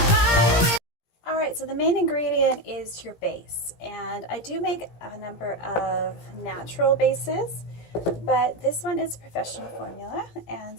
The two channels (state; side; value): late; right; 17 ms